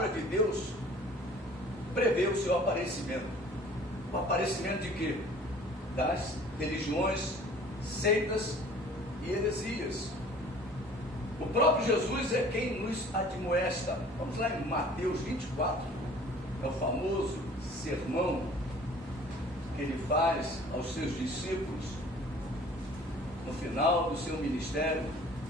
de Deus prevê o seu aparecimento. O aparecimento de quê? Das religiões, seitas e heresias. O próprio Jesus é quem nos admoesta. Vamos lá em Mateus 24, é o famoso sermão que ele faz aos seus discípulos no final do seu ministério.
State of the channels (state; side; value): normal; both; correlation 0.50